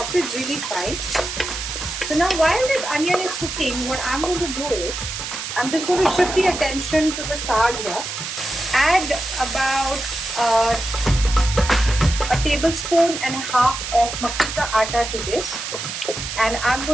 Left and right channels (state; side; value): noise; right; hiss, 6 dB below the sound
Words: it really fine. So now while this onion is cooking, what I'm going to do is I'm just going to shift the attention to the saag here. Add about a tablespoon and a half of makki ka atta to this, and I'm